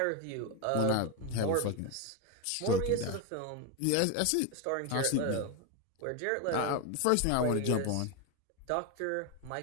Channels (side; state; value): both; different; correlation 0.02